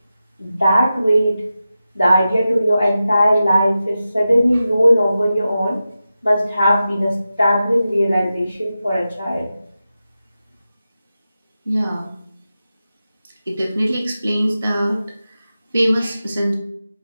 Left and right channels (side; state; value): both; inverted; correlation -0.92